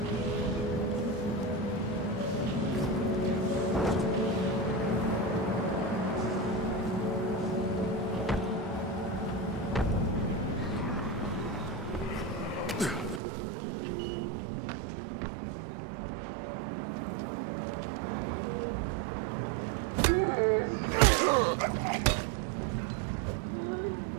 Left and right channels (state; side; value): drops out; left; at 13.2 s